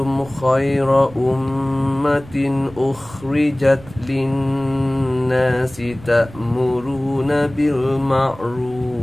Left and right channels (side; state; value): right; noise; rumble, 19 dB below the sound